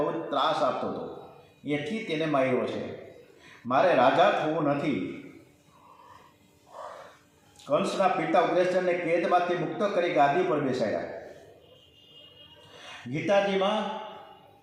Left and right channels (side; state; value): both; identical; correlation 1.00